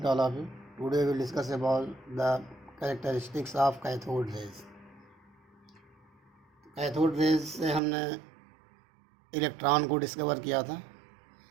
to all of you. Today we will discuss about the characteristics of cathode rays. Cathode rays से हमने electron को discover किया था.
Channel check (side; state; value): left; drops out; at 7.8 s